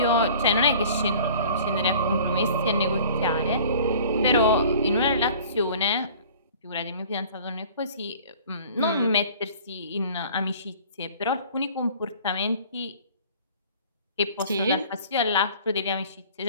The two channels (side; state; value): both; inverted; correlation -0.47